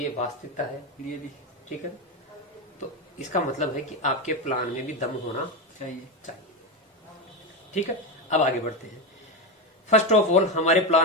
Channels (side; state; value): both; normal; correlation 0.15